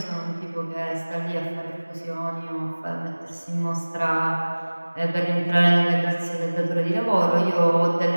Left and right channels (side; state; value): both; inverted; correlation -1.00